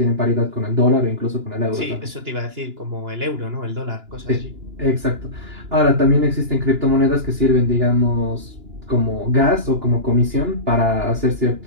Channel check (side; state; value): left; late; 2.9 ms